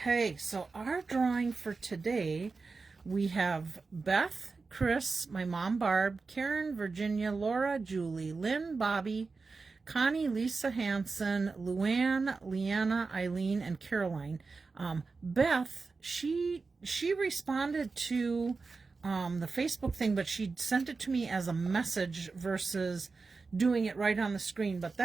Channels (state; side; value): quieter; left; 4.3 dB